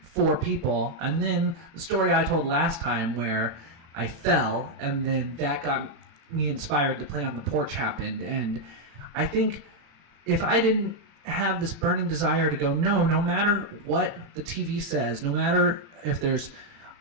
for people. And then the story I told last time where I fell, and then that got me inspired to play on the porch happened. And I think if I didn't have this burning desire to go, no matter what the TV says, no matter if there's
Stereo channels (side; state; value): left; late; 36 ms